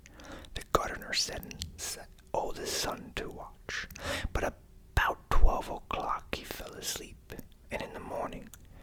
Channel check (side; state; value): both; identical; correlation 1.00